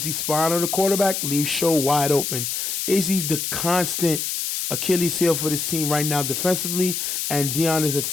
spying on the quarterback, leaves show wide open. Izzy the constant Achilles heel for this team right now defensively, and Dion is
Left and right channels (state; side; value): noise; left; hiss, 2 dB below the sound